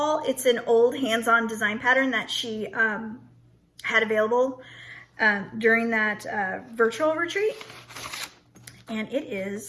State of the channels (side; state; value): both; identical; correlation 1.00